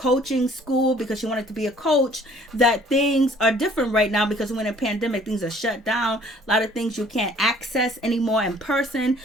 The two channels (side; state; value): both; normal; correlation 0.56